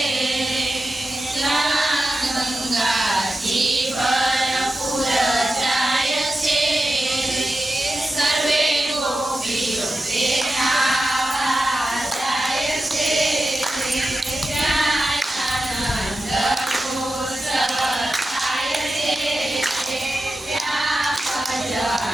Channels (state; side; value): normal; both; correlation 0.92